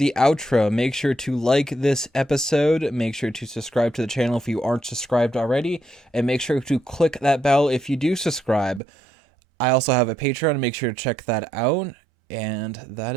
outro. Make sure to like this episode. Make sure to subscribe to the channel if you aren't subscribed already. And make sure to click that bell if you do subscribe. I also have a Patreon. Make sure to check that out. And that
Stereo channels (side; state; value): left; drops out; at 8.8 s